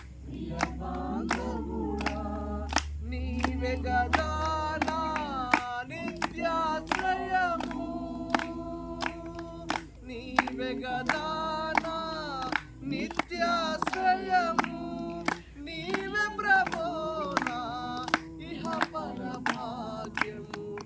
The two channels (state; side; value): identical; both; correlation 1.00